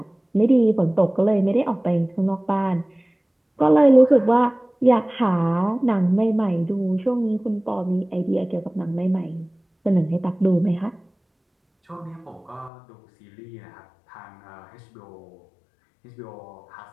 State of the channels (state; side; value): drops out; right; at 12.7 s